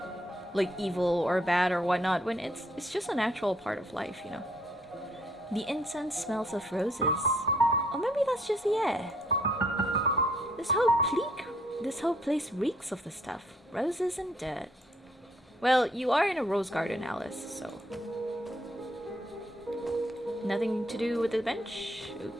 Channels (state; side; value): normal; both; correlation 0.67